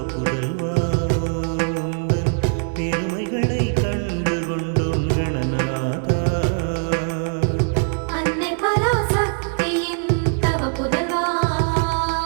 புதல்வா உந்தன் பெருமைகளை கண்டு கொண்டோம் கணநாதா அன்னை பராசக்தியின் தவ புதல்வா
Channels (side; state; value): left; silent; 60 dB below the other